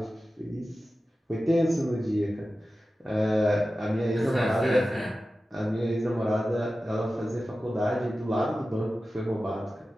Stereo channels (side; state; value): both; normal; correlation 0.94